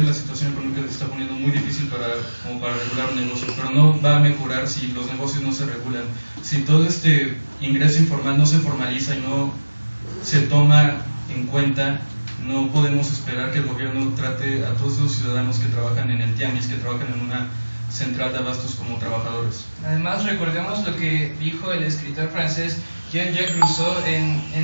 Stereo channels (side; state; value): both; inverted; correlation -1.00